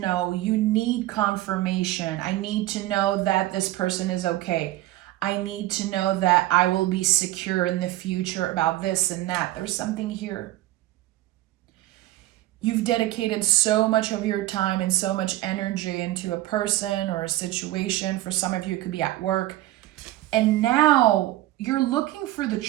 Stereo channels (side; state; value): left; quieter; 16.1 dB